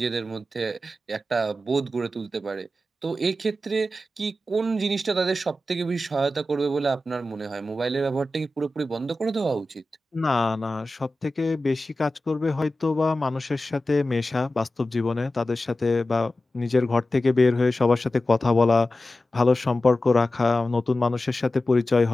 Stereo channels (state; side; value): normal; both; correlation 0.94